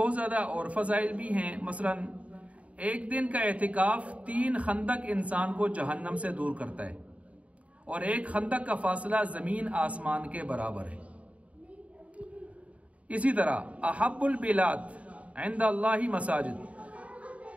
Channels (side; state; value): left; late; 0.066 ms